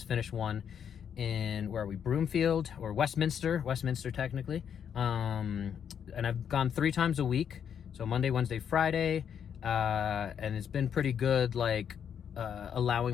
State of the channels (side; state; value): right; quieter; 8.1 dB